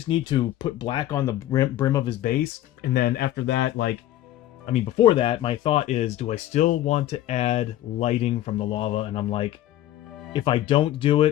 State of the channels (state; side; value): quieter; right; 13.5 dB